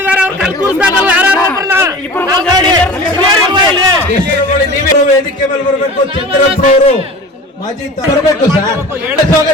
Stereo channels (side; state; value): both; normal; correlation 0.37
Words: ವೇದಿಕೆ ಮೇಲೆ ಬರಬೇಕು. ಚಂದ್ರಪ್ಪನವರು ಮಾಜಿ ಬರಬೇಕು ಸರ್.